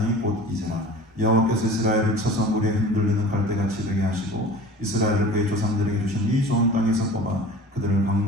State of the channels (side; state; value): both; normal; correlation 0.40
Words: 곧 이제라. 여호와께서 이스라엘을 쳐서 물에 흔들리는 갈대같이 되게 하시고 이스라엘을 그의 조상들에게 주신 이 좋은 땅에서 뽑아 그들을